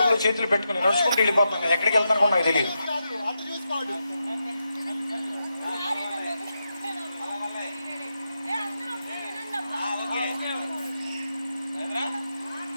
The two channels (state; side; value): inverted; both; correlation -0.86